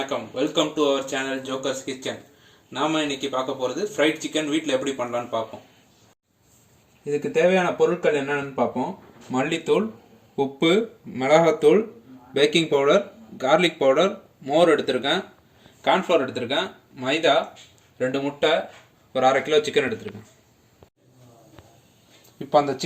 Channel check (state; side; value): identical; both; correlation 1.00